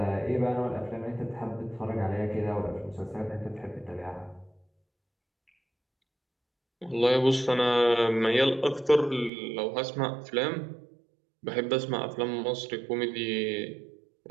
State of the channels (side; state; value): left; drops out; at 9.3 s